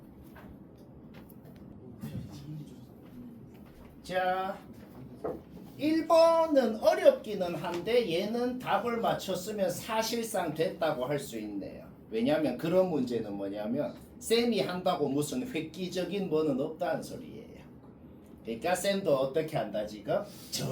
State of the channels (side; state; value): both; identical; correlation 1.00